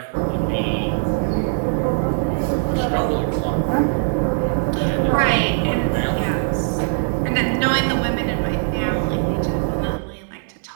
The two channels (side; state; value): left; silent; digital silence